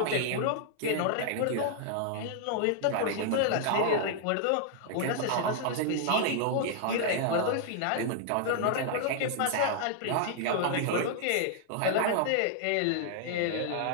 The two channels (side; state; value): both; different; correlation -0.01